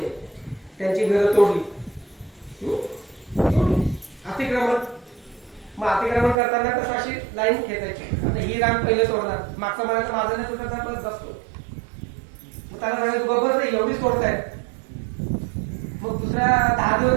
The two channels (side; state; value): left; drops out; at 6.4 s